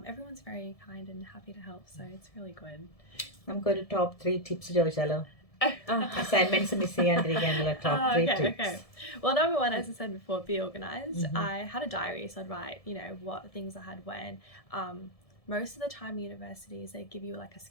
Everyone's very kind and happy to help, so it's really good. നമുക്കൊരു top 3 tips ചോദിച്ചാലോ? Assignments miss ചെയ്യാണ്ടിരിക്കാനുള്ള top 3 tips. Okay. Well, number one, as I said before, be organized. I had a diary, so I'd write, what things I had when. Most of the time universities, they give you like a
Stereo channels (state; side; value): late; right; 1.7 ms